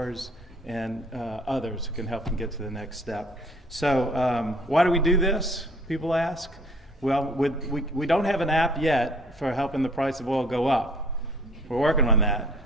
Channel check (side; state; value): both; normal; correlation 0.55